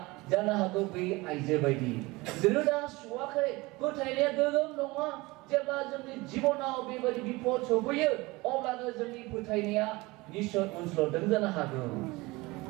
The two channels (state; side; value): quieter; left; 22.5 dB